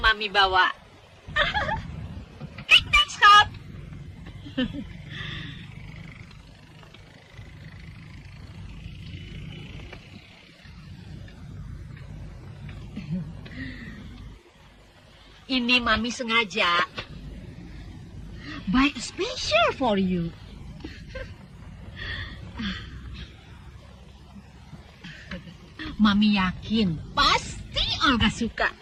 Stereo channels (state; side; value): identical; both; correlation 1.00